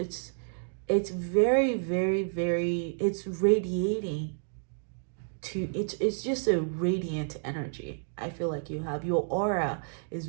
very, very, very, it's radiating to, it's just a radiant energy. I feel like you have, your aura is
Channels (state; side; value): silent; left; digital silence